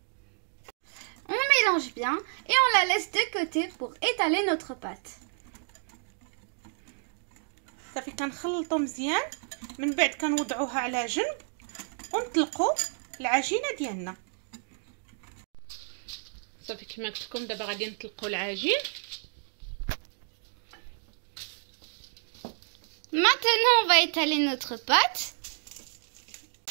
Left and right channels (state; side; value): silent; left; 58 dB below the other